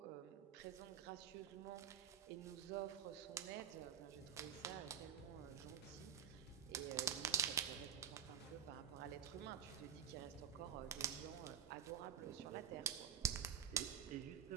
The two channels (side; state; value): left; quieter; 8.6 dB